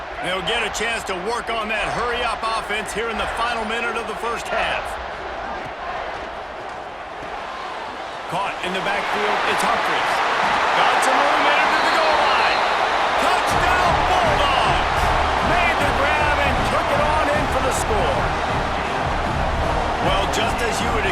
They'll get a chance to work on that hurry-up offense here in the final minute of the first half. Caught in the backfield, it's Humphries. Got some room into the goal line. Touchdown Bulldogs! Made the grab and took it on in for the score. Well, just as you would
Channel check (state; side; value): identical; both; correlation 1.00